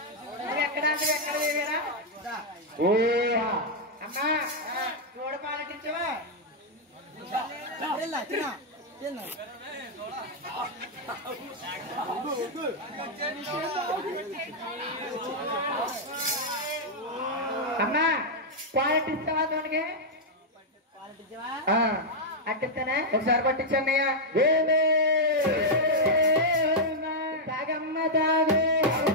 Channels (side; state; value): both; normal; correlation -0.03